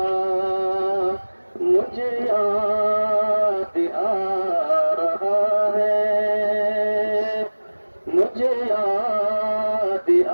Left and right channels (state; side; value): inverted; both; correlation -1.00